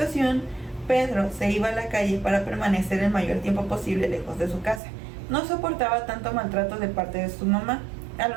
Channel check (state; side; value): drops out; left; at 4.8 s